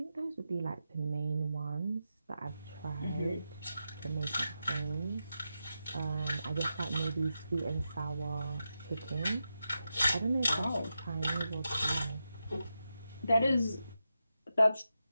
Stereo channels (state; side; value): inverted; both; correlation -0.88